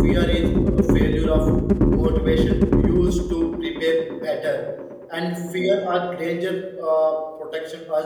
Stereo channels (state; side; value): identical; both; correlation 1.00